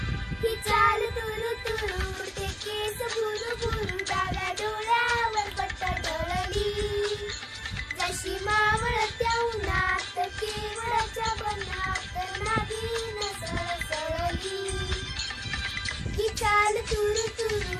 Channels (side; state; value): both; identical; correlation 1.00